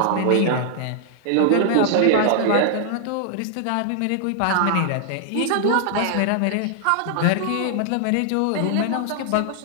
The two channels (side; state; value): both; different; correlation 0.00